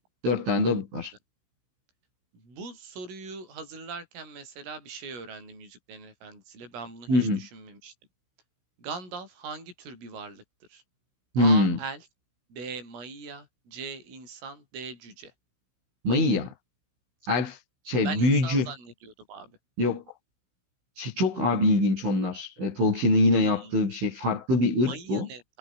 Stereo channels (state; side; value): late; left; 16 ms